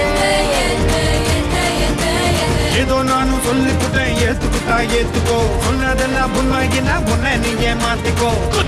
ஏதோ நானும் சொல்லிக்கிட்டேன் ஏத்துக்கிட்டா ஏத்துக்கோ சொன்னதெல்லாம் உண்மையினா உன்னை நீ ஏமாத்திக்கோ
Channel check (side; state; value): both; identical; correlation 1.00